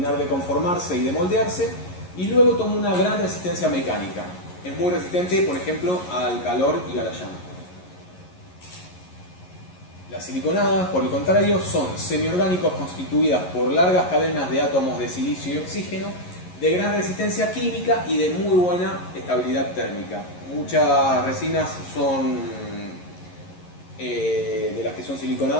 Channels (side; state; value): right; late; 11 ms